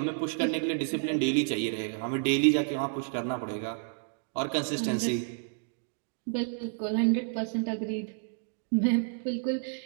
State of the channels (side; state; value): left; silent; digital silence